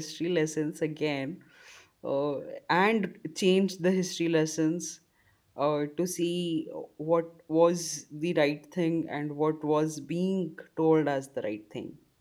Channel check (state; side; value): identical; both; correlation 1.00